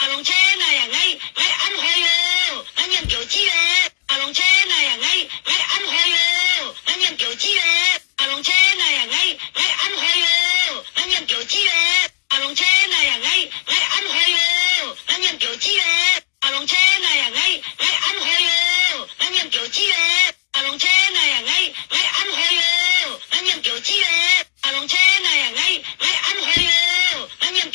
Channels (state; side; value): silent; right; digital silence